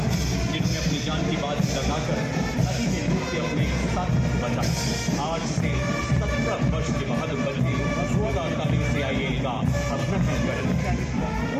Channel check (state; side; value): identical; both; correlation 1.00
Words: जिन्होंने अपनी जान की बात लगाकर नदी में डूब के अपने साथ बचा। आज से 17 वर्ष के बहादुर बच्चे 16 तारीख से IAL का अभिनंदन करें।